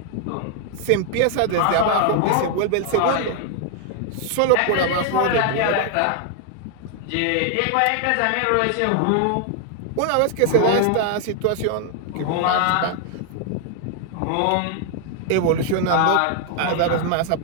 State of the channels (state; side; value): different; both; correlation 0.00